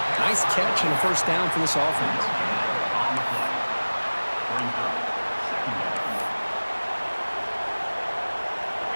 Nice catch and a first down for this offense.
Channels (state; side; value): inverted; both; correlation -1.00